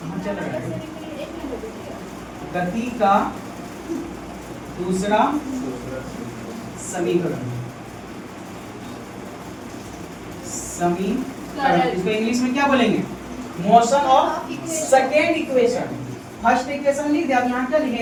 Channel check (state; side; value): identical; both; correlation 1.00